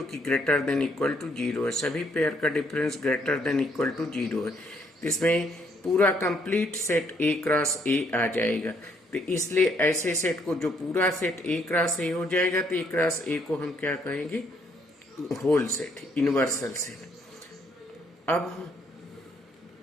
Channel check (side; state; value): both; normal; correlation 0.69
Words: कि ग्रेटर देन इक्वल टू 0 है. सभी पेयर का difference greater than equal to 0 है. इसमें पूरा complete set A cross A आ जाएगा. तो इसलिए ऐसे सेट को, जो पूरा सेट ए क्रॉस ए हो जाएगा, तो ए क्रॉस ए को हम क्या कहेंगे? Whole set, universal set. अब